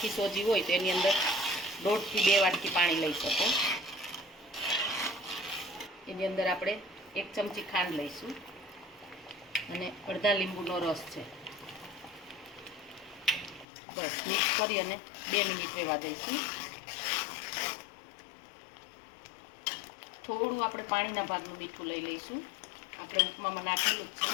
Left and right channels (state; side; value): drops out; right; at 13.7 s